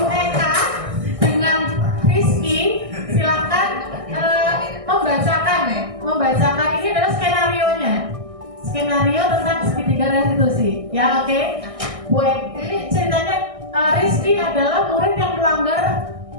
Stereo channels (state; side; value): late; left; 1.6 ms